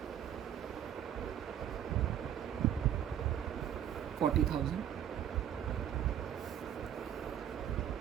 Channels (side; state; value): left; quieter; 10.0 dB